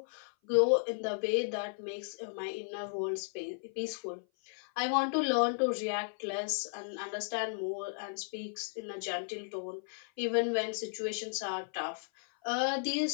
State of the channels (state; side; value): silent; right; 55 dB below the other